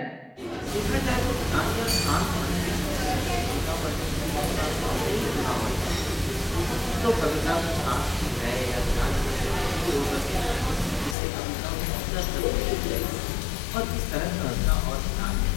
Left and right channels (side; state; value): right; drops out; at 11.2 s